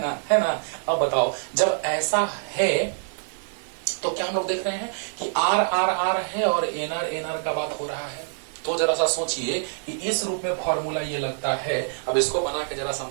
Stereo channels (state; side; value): silent; left; digital silence